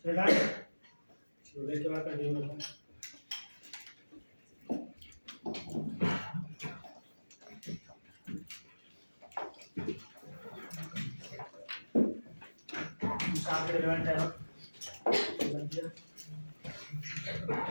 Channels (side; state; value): both; inverted; correlation -1.00